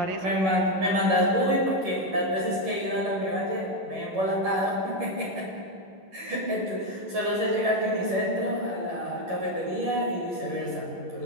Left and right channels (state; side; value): late; left; 11 ms